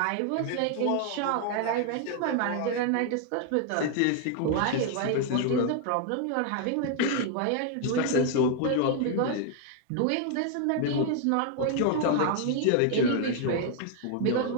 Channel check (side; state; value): both; different; correlation 0.00